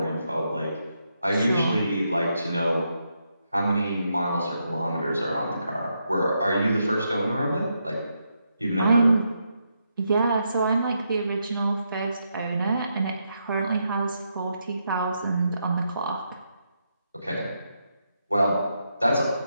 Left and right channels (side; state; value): both; inverted; correlation -0.81